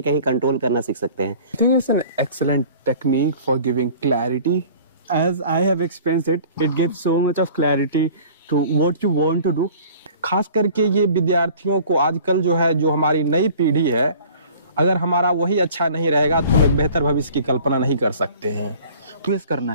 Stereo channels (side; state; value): both; inverted; correlation -0.48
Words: कंट्रोल करना सीख सकते हैं। I think it's an excellent technique for giving clarity. As I have experienced it, it gives so much of clarity to what you want to do. खास करके ये विद्यार्थियों को आजकल जो है, जो हमारी नई पीढ़ी है, अगर हमारा वही अच्छा नहीं रहेगा तो हम एक बेहतर भविष्य की कल्पना नहीं कर सकते हैं। ट्विस्ट करना